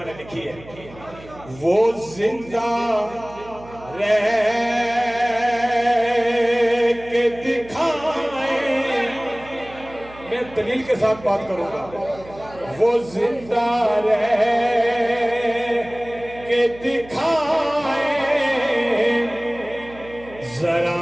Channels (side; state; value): right; noise; hum, 19 dB below the sound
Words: نے لکھی ہے وہ زندہ رہ کے دکھائیں میں دلیل کے ساتھ بات کروں گا وہ زندہ رہ کے دکھائیں ذرا